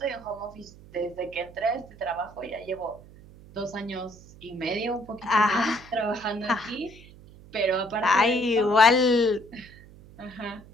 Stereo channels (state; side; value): noise; right; hum, 21 dB below the sound